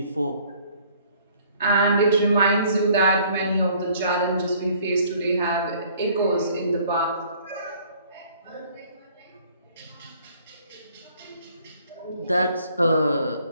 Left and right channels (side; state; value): both; inverted; correlation -0.58